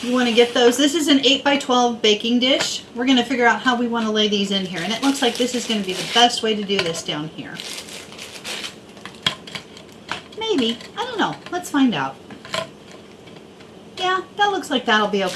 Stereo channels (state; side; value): identical; both; correlation 1.00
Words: You want to get those. This is an 8x12 baking dish. We're going to figure out how we want to lay these in here. And it looks like this is going to be the best way to do this down here. Maybe. I don't know. Let's find out. Yeah, that looks like that'll be